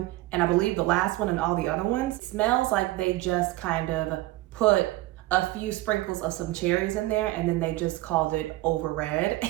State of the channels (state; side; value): quieter; left; 17.9 dB